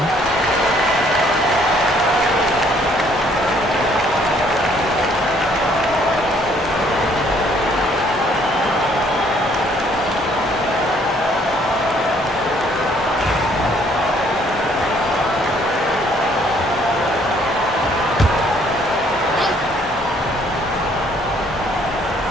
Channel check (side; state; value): both; normal; correlation 0.63